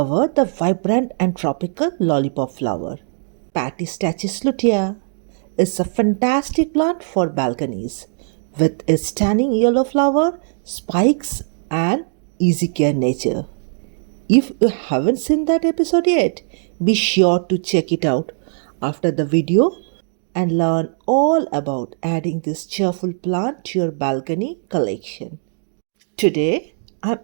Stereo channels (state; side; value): silent; left; digital silence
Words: the vibrant and tropical lollipop flower. Patistachys lutea is a fantastic plant for balconies with its stunning yellow flower, spikes, and easy care nature. If you haven't seen that episode yet, be sure to check it out after the video and learn all about adding this cheerful plant to your balcony collection. Today, I've